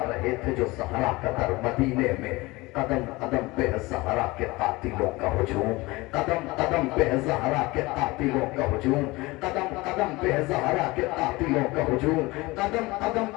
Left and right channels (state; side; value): quieter; right; 22.0 dB